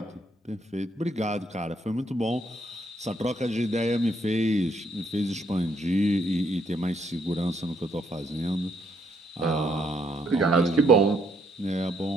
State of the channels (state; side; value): normal; both; correlation 0.71